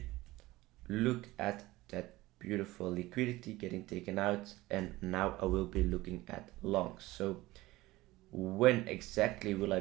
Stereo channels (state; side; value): quieter; left; 18.7 dB